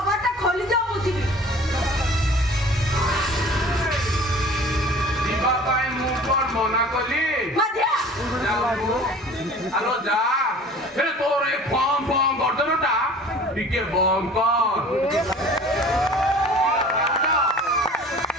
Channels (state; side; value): normal; both; correlation 0.45